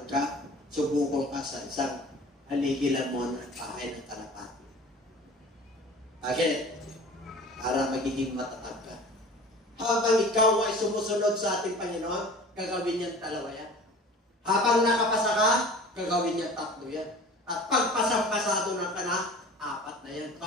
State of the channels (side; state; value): both; normal; correlation 0.42